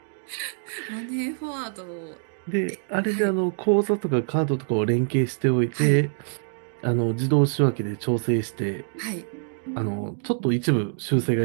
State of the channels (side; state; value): left; silent; digital silence